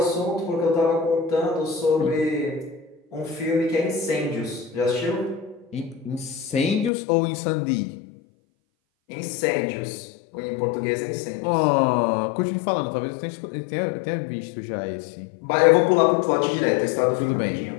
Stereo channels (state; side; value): drops out; right; at 6.9 s